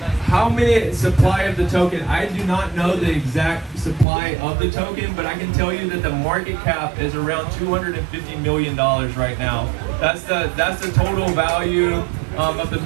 How many supply of the token? I do not know the exact supply of the token, but I can tell you that the market cap is around $250 million right now. That's the total value of the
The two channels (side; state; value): left; drops out; at 4.0 s